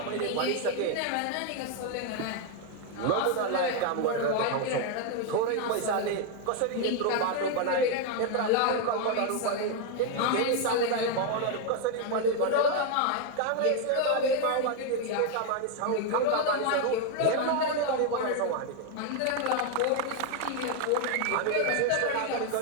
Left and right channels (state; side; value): different; both; correlation 0.01